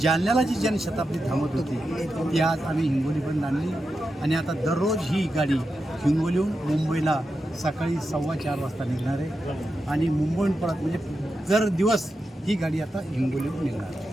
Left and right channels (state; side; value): normal; both; correlation 0.89